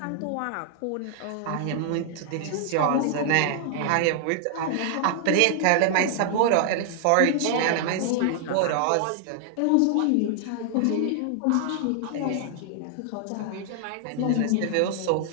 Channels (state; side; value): different; both; correlation 0.00